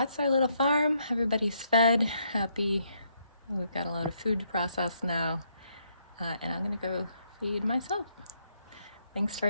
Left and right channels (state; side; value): inverted; both; correlation -0.74